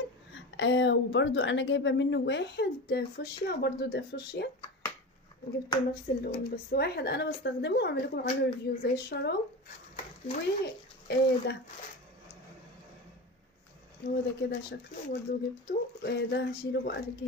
وبرضو انا جايبة منه واحد فوشيا، برضو ده فوشيا. جبته نفس اللون، بس واحد انا بستخدمه واعمل لكم عنه ريفيو زي الشراب. ده هو ده كده شكله، برضو جبته. ده هشيله بقى في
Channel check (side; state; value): both; normal; correlation 0.27